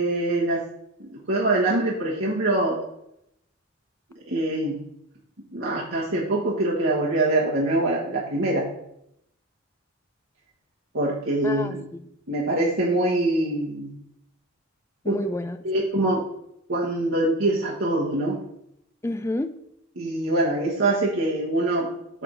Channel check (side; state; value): both; normal; correlation 0.20